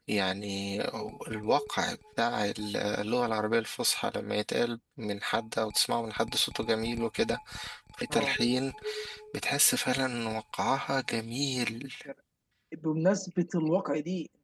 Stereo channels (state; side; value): identical; both; correlation 1.00